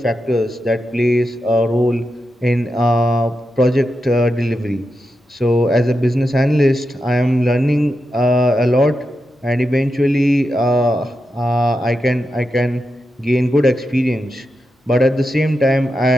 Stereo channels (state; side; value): normal; both; correlation 0.88